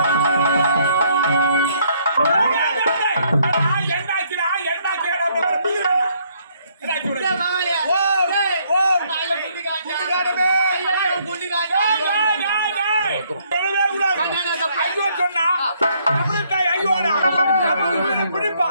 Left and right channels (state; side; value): inverted; both; correlation -0.68